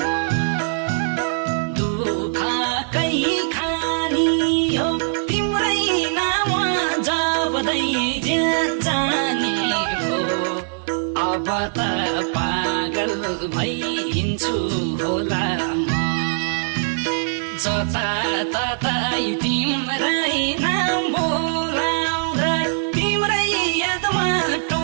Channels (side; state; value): left; silent; digital silence